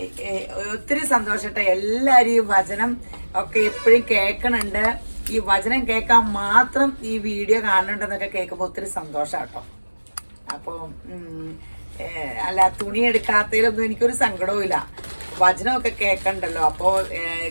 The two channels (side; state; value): both; inverted; correlation -1.00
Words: ഒത്തിരി സന്തോഷട്ടെ. എല്ലാവരും ഈ വചനം ഒക്കെ എപ്പോഴും കേൾക്കണുണ്ട്. ഈ വചനം കേൾക്കാൻ മാത്രം ഈ വീഡിയോ കാണുന്നുണ്ടെന്നൊക്കെ കേൾക്കുമ്പോൾ ഒത്തിരി സന്തോഷം കേട്ടോ. അപ്പോൾ അല്ല, തുണി എടുക്കാത്തതിലൊന്നും എനിക്കൊരു സങ്കടവും ഇല്ല. വചനമൊക്കെ കേൾക്കണ്ടല്ലോ. അപ്പോൾ